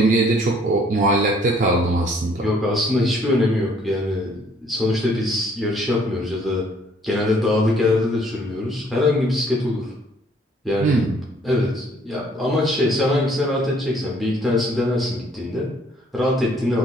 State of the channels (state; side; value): normal; both; correlation 0.61